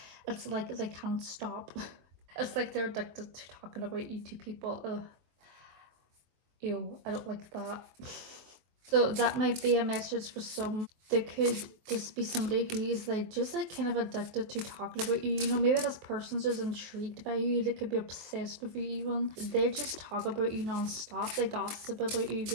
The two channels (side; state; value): left; late; 23 ms